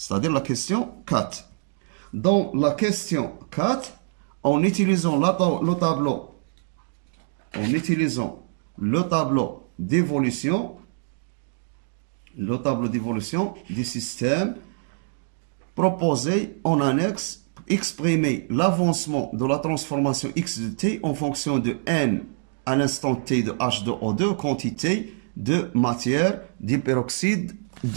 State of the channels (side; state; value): left; silent; digital silence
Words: la question 4. Dans la question 4, en utilisant le tableau d'évolution du système proposé en annexe, exprimer l'avancement de la transformation X de T en fonction de N à l'instant T de H2O2, quantité de matière d'hyperoxyde